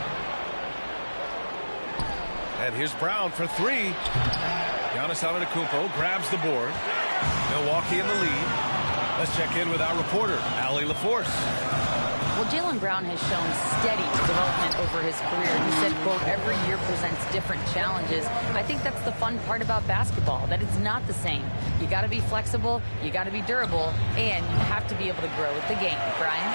And here's Brown for 3. Giannis Antetokounmpo grabs the board. Milwaukee in the lead. Let's check in with our reporter, Allie LaForce. Well, Jaylen Brown has shown steady development over his career. He said, quote, every year presents different challenges. I think that's the fun part about basketball, that it's not the same. You got to be flexible, you got to be durable, and you have to be able to grow with the game. Brian?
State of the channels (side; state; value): both; inverted; correlation -1.00